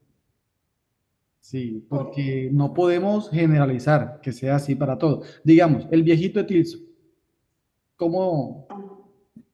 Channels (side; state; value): both; identical; correlation 1.00